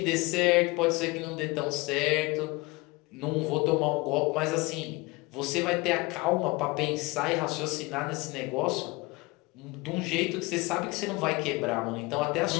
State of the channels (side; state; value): right; quieter; 23.9 dB